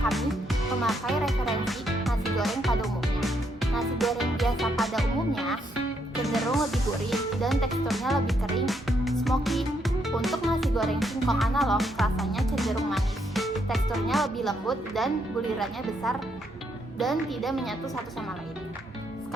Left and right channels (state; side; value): normal; both; correlation 0.75